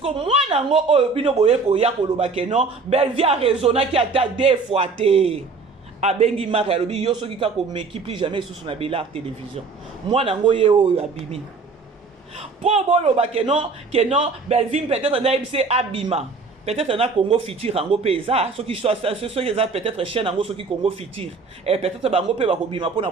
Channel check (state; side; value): quieter; left; 4.4 dB